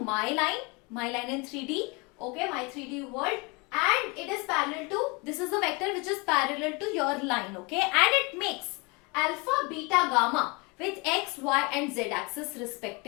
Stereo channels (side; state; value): right; quieter; 28.6 dB